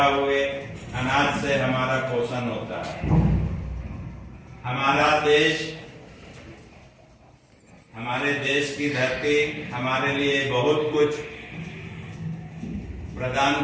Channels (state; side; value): identical; both; correlation 1.00